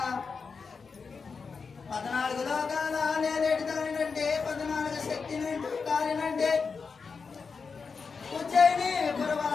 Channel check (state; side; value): quieter; right; 5.1 dB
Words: 14 లోకాల నేరేటి దానినంటే 14 శక్తినంటూ కాలినంటే ఉజ్జయిని